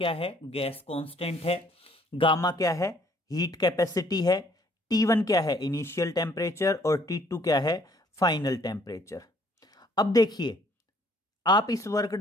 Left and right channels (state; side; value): normal; both; correlation 0.62